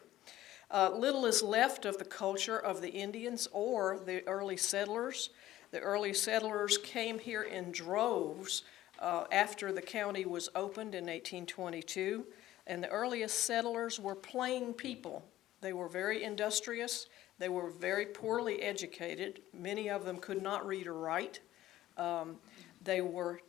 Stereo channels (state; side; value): quieter; right; 14.4 dB